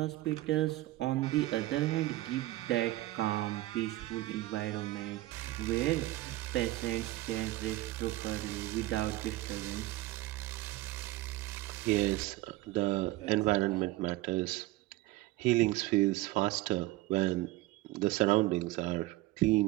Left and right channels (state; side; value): quieter; left; 17.9 dB